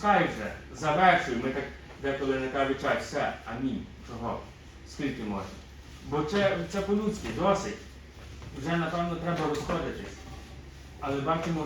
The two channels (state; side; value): identical; both; correlation 1.00